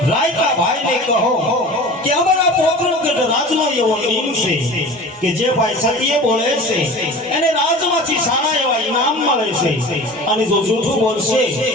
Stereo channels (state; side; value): normal; both; correlation 0.38